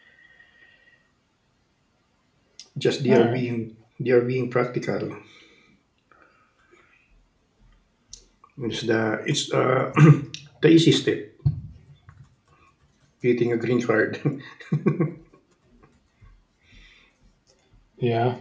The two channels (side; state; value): both; identical; correlation 1.00